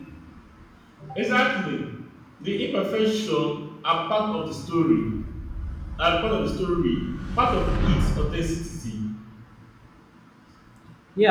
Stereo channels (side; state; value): both; identical; correlation 1.00